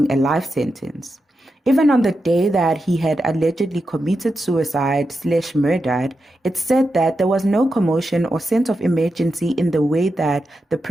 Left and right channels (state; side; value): normal; both; correlation 0.88